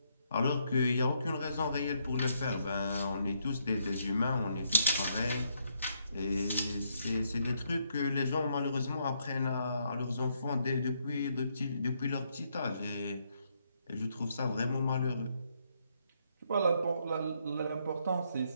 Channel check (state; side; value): inverted; both; correlation -0.74